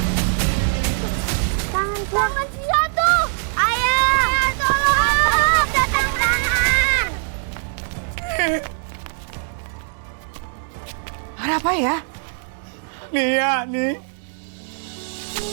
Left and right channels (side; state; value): left; silent; digital silence